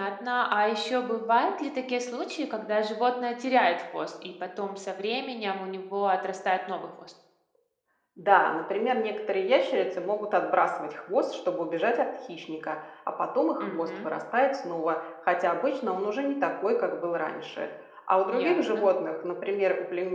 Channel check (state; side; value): identical; both; correlation 1.00